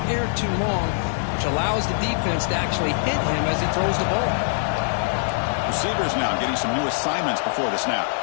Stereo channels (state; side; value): silent; right; 62 dB below the other